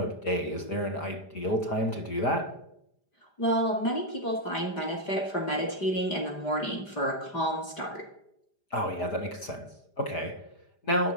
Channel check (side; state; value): right; late; 5.0 ms